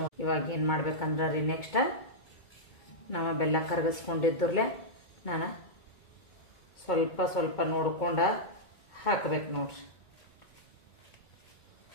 ಇವಾಗ ಏನು ಮಾಡ್ಬೇಕಂದ್ರೆ ರೀ, ನೆಕ್ಸ್ಟ್ ನಾವು ಬೆಲ್ಲ ಕರಗಿಸ್ಕೊಂಡಿದ್ರಲ್ಲೇ ನಾನು ಸ್ವಲ್ಪ ಸ್ವಲ್ಪ ನೋಡ್ಕೊಂಡು ಹಾಕ್ಬೇಕು ನೋಡ್ರಿ.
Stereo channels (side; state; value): right; late; 2.2 ms